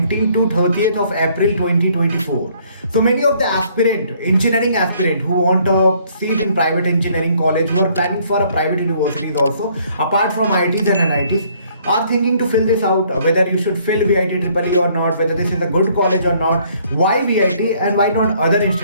to 30th of April 2024. So many of the engineering aspirant who want a seat in private engineering college, who are planning for a private universities also apart from IITs and NITs, are thinking to fill this out, whether you should fill VIT Triple E or not, whether this is a good college or not, why VIT and why not other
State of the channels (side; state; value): both; inverted; correlation -0.63